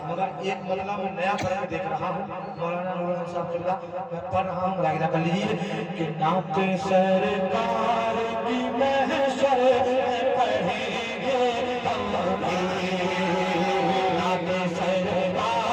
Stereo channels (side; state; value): both; identical; correlation 1.00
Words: मगर एक मसला मैं नया पढ़ के देख रहा हूँ, मौलाना नूरुल साहब चिल्ला मैं पढ़ रहा हूँ, मुलाहिजा कर लीजिए कि नाते सरकार की महशर में पढ़ेंगे हम भी, नाते